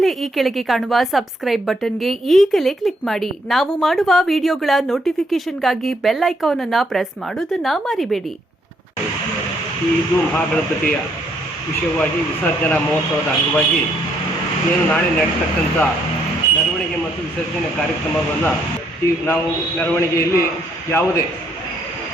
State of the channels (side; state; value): both; normal; correlation 0.71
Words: ಈ ಕೆಳಗೆ ಕಾಣುವ ಸಬ್ಸ್ಕ್ರೈಬ್ ಬಟನ್ಗೆ ಈಗಲೇ ಕ್ಲಿಕ್ ಮಾಡಿ. ನಾವು ಮಾಡುವ ವಿಡಿಯೋಗಳ ನೋಟಿಫಿಕೇಶನ್ಗಾಗಿ ಬೆಲ್ ಐಕಾನ್ ಅನ್ನು ಪ್ರೆಸ್ ಮಾಡೋದನ್ನ ಮರಿಬೇಡಿ. ಇದು ಮಹಾಗಣಪತಿಯ ವಿಷಯವಾಗಿ ವಿಸರ್ಜನಾ ಮಹೋತ್ಸವದ ಅಂಗವಾಗಿ ಏನು ನಾಳೆ ನಡೆಯತಕ್ಕಂಥ ಮೆರವಣಿಗೆ ಮತ್ತು ವಿಸರ್ಜನೆ ಕಾರ್ಯಕ್ರಮವನ್ನು ನಾವು ಮೆರವಣಿಗೆಯಲ್ಲಿ ಯಾವುದೇ